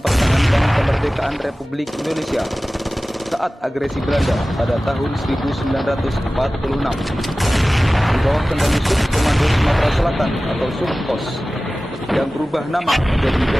kemerdekaan Republik Indonesia saat agresi Belanda pada tahun 1946. Di bawah kendali Subkomando Sumatera Selatan atau Subkos yang berubah nama menjadi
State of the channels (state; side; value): normal; both; correlation 0.96